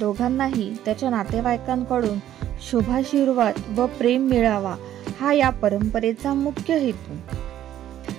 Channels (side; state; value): left; quieter; 11.8 dB